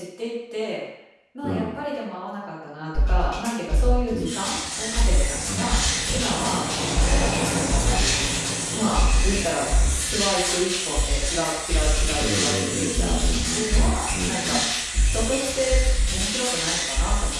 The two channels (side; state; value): both; identical; correlation 1.00